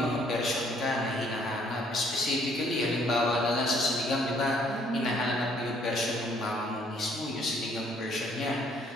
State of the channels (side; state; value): both; normal; correlation 0.64